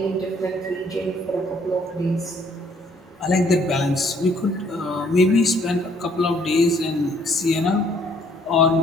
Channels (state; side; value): normal; both; correlation 0.63